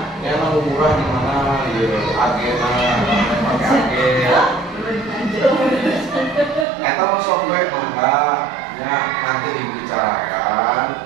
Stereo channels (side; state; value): left; drops out; at 6.7 s